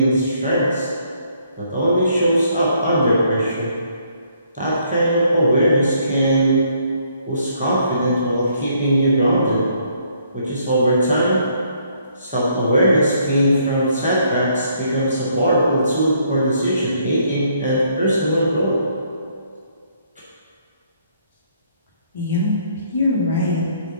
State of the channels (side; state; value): both; inverted; correlation -0.68